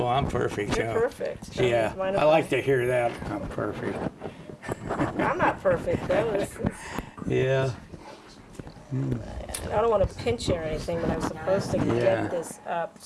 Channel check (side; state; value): both; identical; correlation 1.00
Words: I'm perfect. You're perfect. Yeah. I like to hear that. I'm perfect. I'm not perfect, though. Yeah. I don't want to pinch you or anything, but I'm supposed to get this up